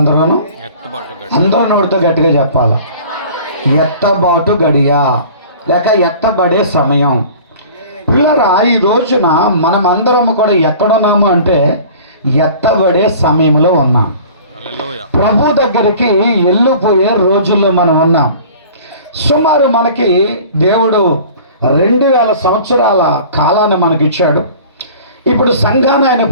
అందరూ నోటితో గట్టిగా చెప్పాలి. ఎత్తబాటు గడియ లేక ఎత్తబడే సమయం. పిల్లరా, ఈ రోజున మనమందరం కూడా ఎక్కడున్నాము అంటే ఎత్తబడే సమయంలో ఉన్నాం. ప్రభు దగ్గరికి వెళ్ళిపోయే రోజుల్లో మనం ఉన్నాం. సుమారు మనకి దేవుడు 2000 సంవత్సరాల కాలాన్ని మనకి ఇచ్చాడు. ఇప్పుడు సంఘాన్ని ఆయన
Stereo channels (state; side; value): inverted; both; correlation -0.45